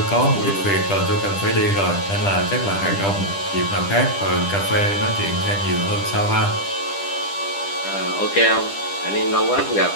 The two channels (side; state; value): right; late; 10 ms